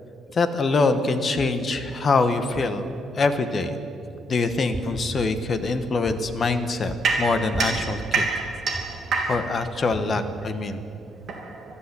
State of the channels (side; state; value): both; normal; correlation 0.77